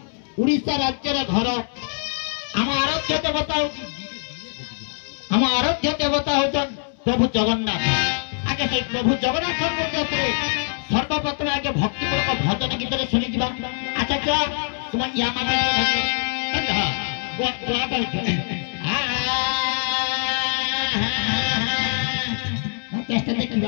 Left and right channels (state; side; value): silent; right; 63 dB below the other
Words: उड़ीसा राज्य घर आम आराध्य देवता आम आराध्य देवता हूँ प्रभु जगन्नाथ आगे से प्रभु जगन्नाथ सर्वप्रथम आगे भक्तिपूर्वक भजन गीत शुणी जा अच्छा क्या तुम या देखा